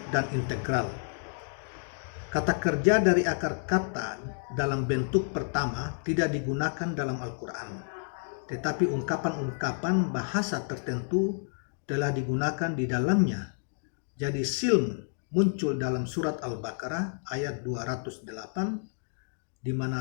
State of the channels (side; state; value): right; silent; digital silence